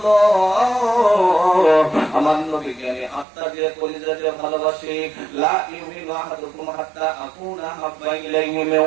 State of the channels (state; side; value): drops out; left; at 3.2 s